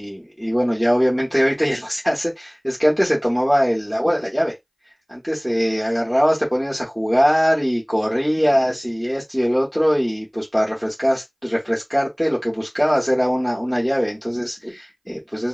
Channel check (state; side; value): identical; both; correlation 1.00